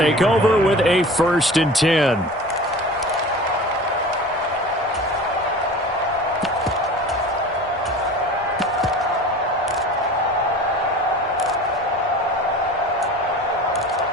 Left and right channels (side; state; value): both; normal; correlation 0.38